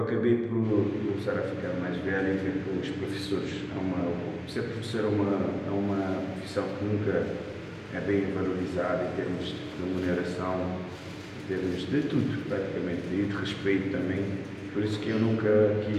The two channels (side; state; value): both; identical; correlation 1.00